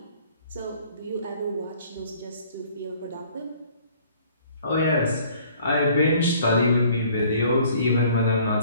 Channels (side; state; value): both; inverted; correlation -0.56